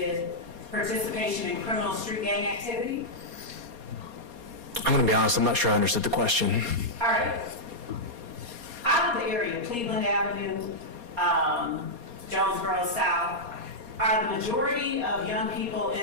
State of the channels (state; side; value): late; left; 4.2 ms